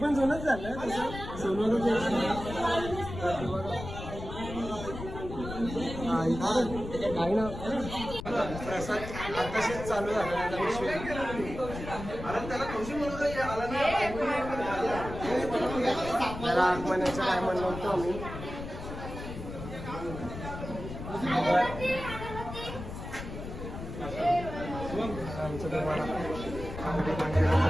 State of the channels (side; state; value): left; noise; rumble, 9 dB below the sound